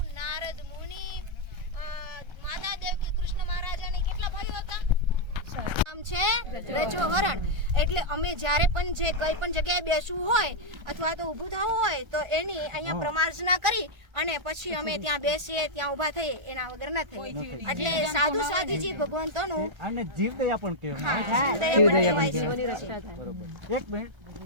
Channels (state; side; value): late; left; 1.3 ms